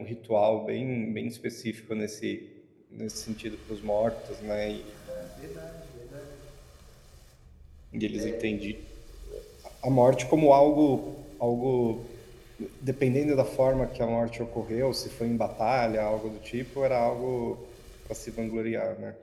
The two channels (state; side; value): identical; both; correlation 1.00